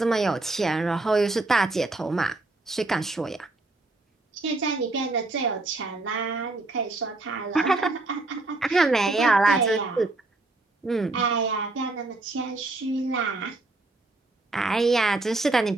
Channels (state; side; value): quieter; left; 3.1 dB